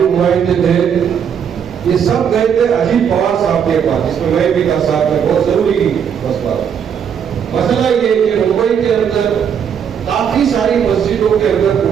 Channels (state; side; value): quieter; left; 7.9 dB